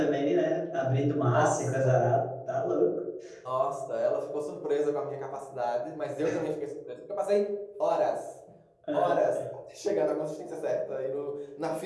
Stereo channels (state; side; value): identical; both; correlation 1.00